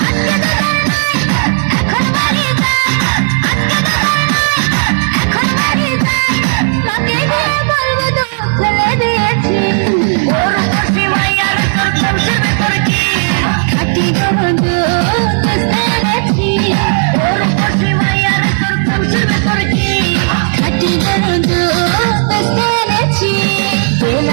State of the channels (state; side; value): silent; left; digital silence